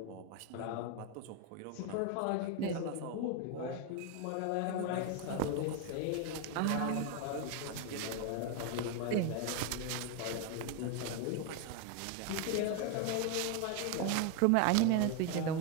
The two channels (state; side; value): different; both; correlation 0.01